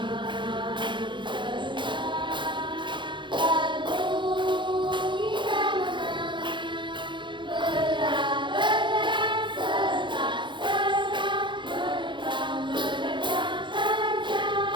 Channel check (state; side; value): late; left; 0.23 ms